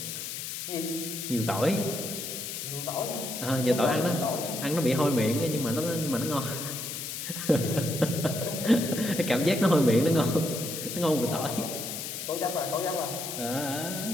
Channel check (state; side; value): noise; left; hiss, 6 dB below the sound